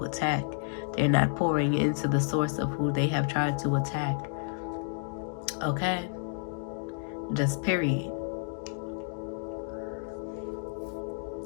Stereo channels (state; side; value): silent; right; digital silence